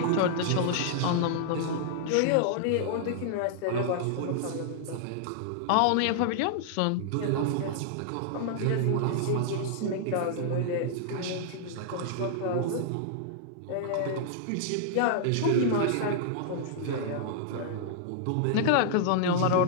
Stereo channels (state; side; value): different; both; correlation -0.01